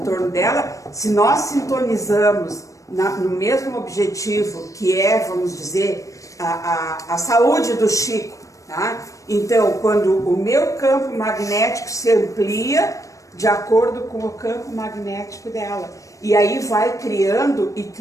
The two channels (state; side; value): late; right; 0.16 ms